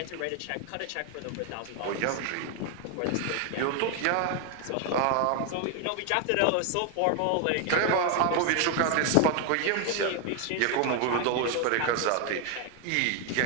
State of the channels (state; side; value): different; both; correlation 0.01